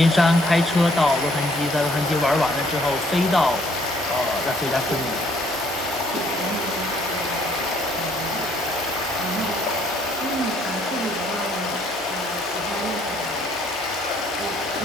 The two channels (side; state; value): both; normal; correlation 0.63